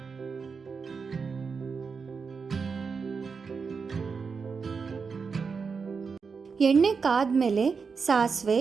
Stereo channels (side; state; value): left; quieter; 5.3 dB